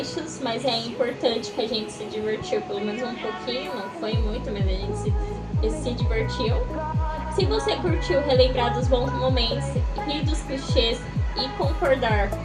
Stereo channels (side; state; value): both; identical; correlation 1.00